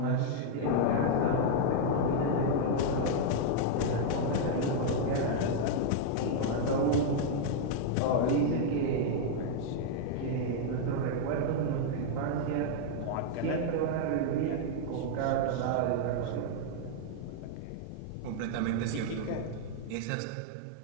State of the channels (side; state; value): both; different; correlation -0.01